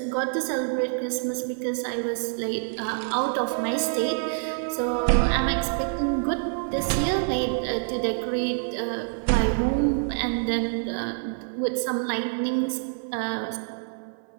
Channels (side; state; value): left; silent; 56 dB below the other